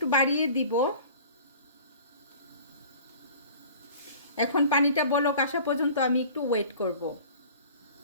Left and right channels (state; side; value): inverted; both; correlation -0.45